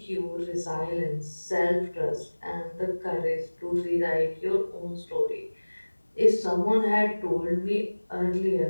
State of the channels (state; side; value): inverted; both; correlation -1.00